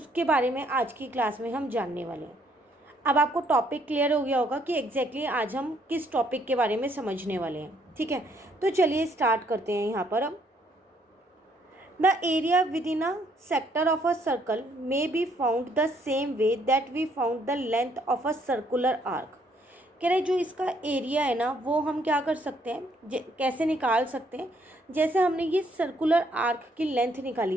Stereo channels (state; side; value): normal; both; correlation 0.68